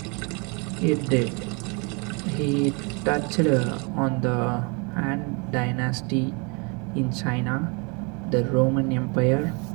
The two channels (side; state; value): left; quieter; 32.1 dB